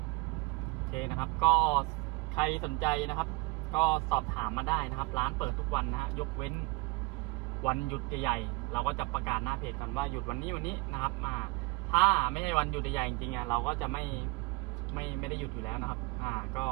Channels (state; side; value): quieter; left; 24.6 dB